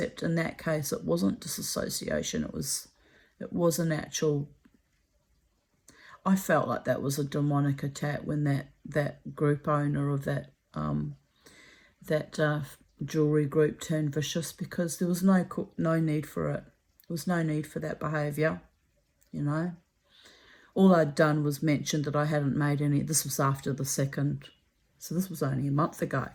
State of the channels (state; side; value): identical; both; correlation 1.00